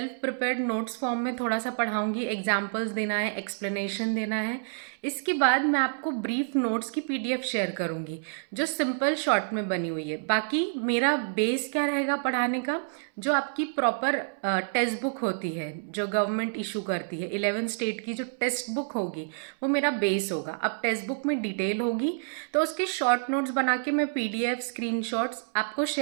प्रिपेयर्ड नोट्स फॉर्म में थोड़ा सा पढ़ाऊंगी, एग्जाम्पल्स देना है, एक्सप्लेनेशन देना है. इसके बाद मैं आपको ब्रीफ नोट्स की पीडीएफ शेयर करूंगी जो सिंपल शॉर्ट में बनी हुई है. बाकी मेरा बेस क्या रहेगा पढ़ाने का? जो आपकी प्रॉपर टेक्स्ट बुक होती है जो गवर्नमेंट इशू करती है, 11 स्टेट की जो टेक्स्ट बुक होगी वो मेरा बेस होगा. अब टेक्स्ट बुक में डिटेल होगी तो उसके शॉर्ट नोट्स बना के मैं पीडीएफ स्क्रीनशॉट्स आपको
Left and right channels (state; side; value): silent; left; 59 dB below the other